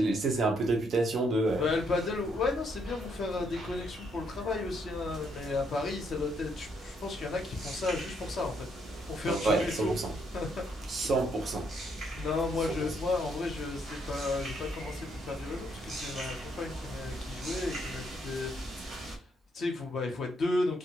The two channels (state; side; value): normal; both; correlation 0.73